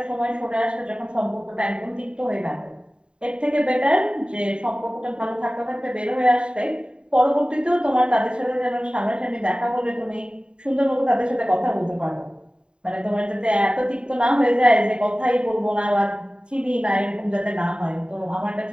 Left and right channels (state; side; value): late; left; 0.051 ms